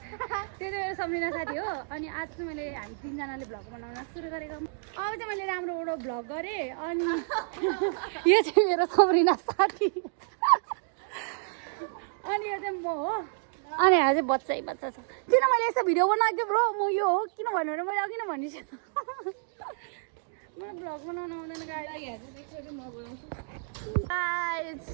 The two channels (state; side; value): silent; left; digital silence